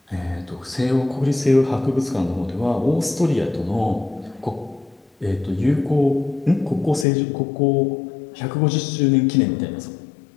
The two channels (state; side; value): drops out; right; at 7.1 s